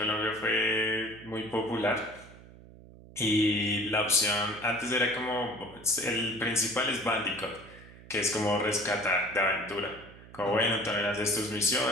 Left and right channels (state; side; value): noise; right; hum, 20 dB below the sound